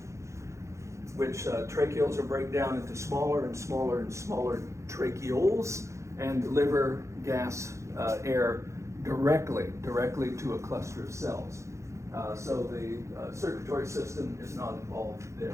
which tracheals will break down into smaller and smaller and smaller tracheoles and deliver gas, air directly to a cluster of cells. So the circulatory system is not involved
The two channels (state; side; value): late; left; 0.14 ms